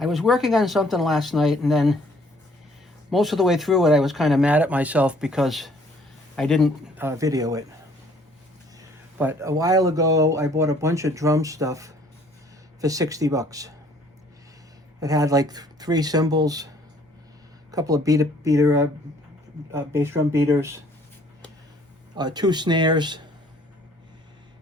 was working on something last night, and then most of the way through it I was kind of mad at myself because I didn't video it. But a while ago I bought a bunch of drum stuff for 60 bucks. It had like 3 cymbals, a couple of bass drum beaters, 2 snares,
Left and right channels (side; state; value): both; normal; correlation 0.59